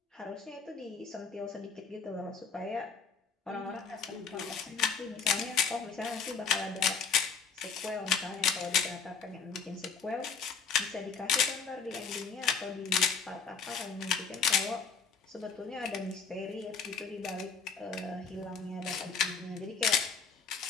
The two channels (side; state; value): right; quieter; 5.7 dB